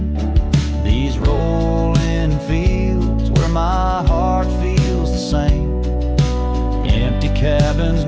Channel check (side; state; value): both; identical; correlation 1.00